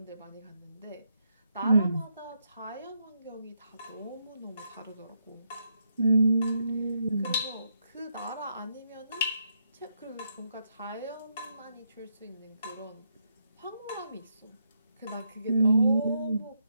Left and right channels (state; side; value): inverted; both; correlation -0.80